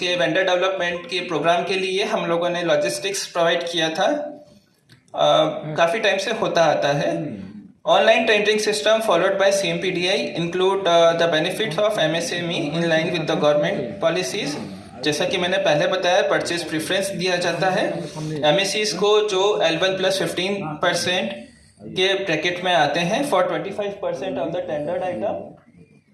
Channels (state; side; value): identical; both; correlation 1.00